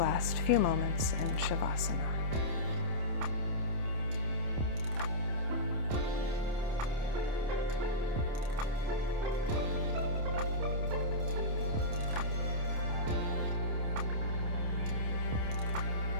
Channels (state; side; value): late; left; 28 ms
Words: few moments in Shavasana.